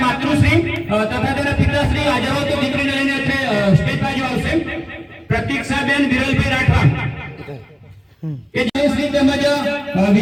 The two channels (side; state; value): both; identical; correlation 1.00